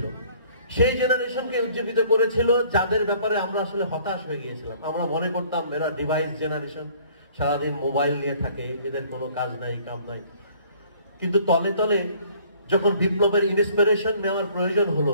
সেই জেনারেশনকে উজ্জীবিত করেছিল যাদের ব্যাপারে আমরা আসলে হতাশ হয়ে গিয়েছিলাম। আমরা মনে করতাম এরা ডিভাইস জেনারেশন, সারাদিন মোবাইল নিয়ে থাকে, এদের কোনো কাজ নাই, কাম নাই। কিন্তু তলে তলে যখন বিপ্লবের ইন্সপিরেশন নেওয়ার প্রয়োজন হলো,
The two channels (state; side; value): inverted; both; correlation -0.57